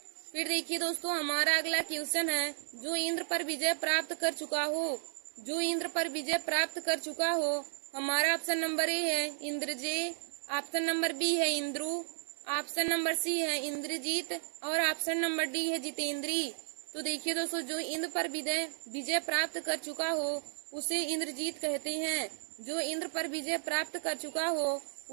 फिर देखिए दोस्तों, हमारा अगला क्वेश्चन है, जो इंद्र पर विजय प्राप्त कर चुका हो, जो इंद्र पर विजय प्राप्त कर चुका हो। हमारा ऑप्शन नंबर ए है इंद्रजेय, ऑप्शन नंबर बी है इंद्रु, ऑप्शन नंबर सी है इंद्रजीत और ऑप्शन नंबर डी है जितेंद्री। तो देखिए दोस्तों, जो इंद्र पर विजय प्राप्त कर चुका हो उसे इंद्रजीत कहते हैं। जो इंद्र पर विजय प्राप्त कर चुका हो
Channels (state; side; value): silent; left; digital silence